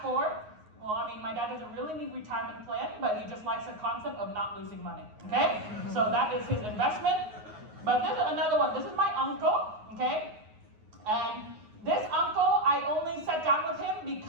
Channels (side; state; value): left; late; 9.5 ms